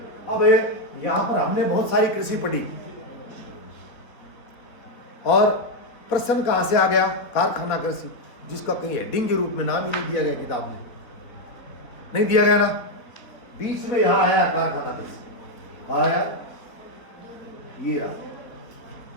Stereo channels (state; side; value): late; right; 4.1 ms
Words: अब यहाँ पर हमने बहुत सारी कृषि पढ़ी और प्रश्न कहाँ से आ गया? कारखाना कृषि, जिसका कहीं हेडिंग के रूप में नाम ही नहीं दिया गया किताब में, नहीं दिया गया ना। बीच में यहाँ आया कारखाना कृषि, आया ये रहा।